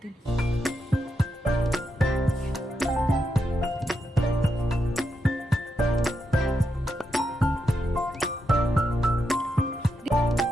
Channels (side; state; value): both; normal; correlation 0.84